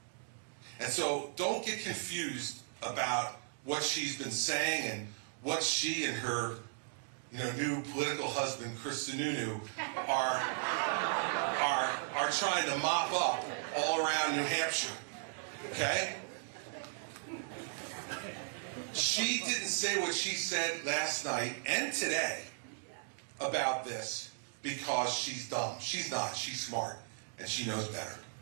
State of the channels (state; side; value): silent; left; digital silence